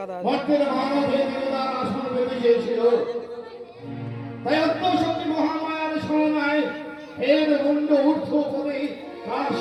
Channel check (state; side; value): identical; both; correlation 1.00